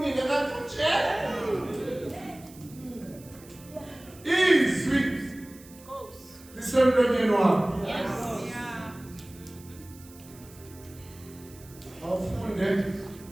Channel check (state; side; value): noise; right; hiss, 22 dB below the sound